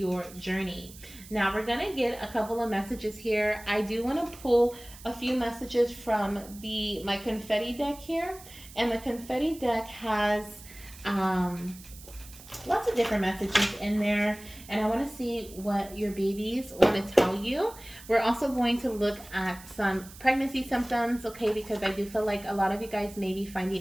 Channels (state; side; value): noise; right; hiss, 18 dB below the sound